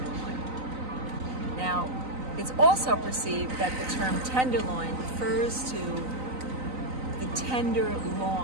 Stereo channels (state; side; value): late; left; 3.9 ms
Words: Now, it's also perceived that the term tenderloin refers to the tender